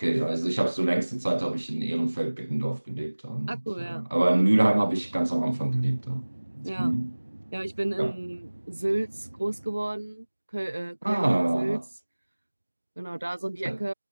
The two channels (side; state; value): both; inverted; correlation -1.00